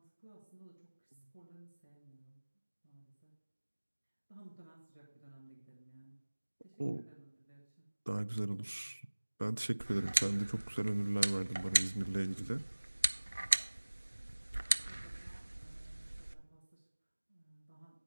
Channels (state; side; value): inverted; both; correlation -1.00